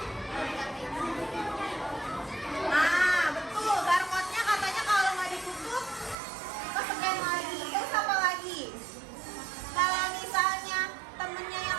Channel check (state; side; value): drops out; left; at 6.2 s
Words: Nah, betul. Barcode-nya katanya kalau nggak ditutup, ke-scan lagi. Terus apa lagi? Kalau misalnya temennya